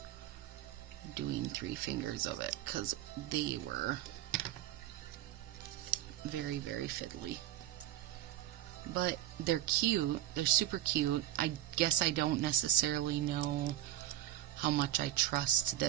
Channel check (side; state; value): left; quieter; 13.0 dB